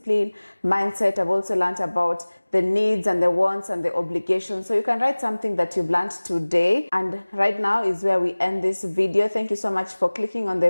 mindset. I've also learned about the needs and the wants and the obligations. So you can write something that you've learned today. And right now is where we end this video. Thank you so much for clicking on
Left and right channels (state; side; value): inverted; both; correlation -1.00